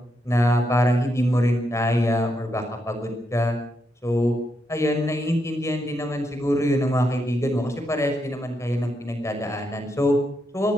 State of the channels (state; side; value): normal; both; correlation 0.81